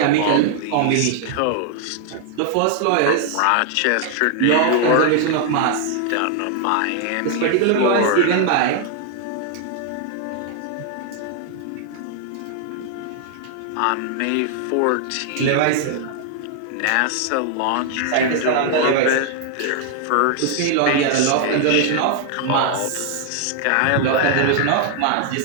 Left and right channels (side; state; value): both; different; correlation 0.00